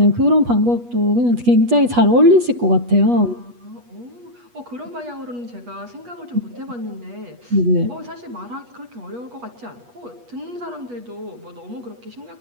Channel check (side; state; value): left; late; 8.3 ms